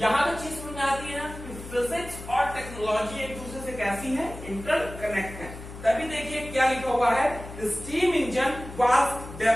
तक चीज समझ में आती है ना कि फिजिक्स और टेक्नोलॉजी एक दूसरे से कैसी है, इंटरकनेक्ट है। तभी देखिए क्या लिखा हुआ है, steam engine was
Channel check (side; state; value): left; noise; hum, 13 dB below the sound